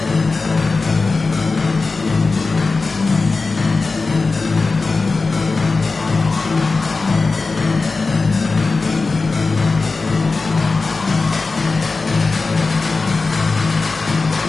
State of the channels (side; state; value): right; quieter; 3.9 dB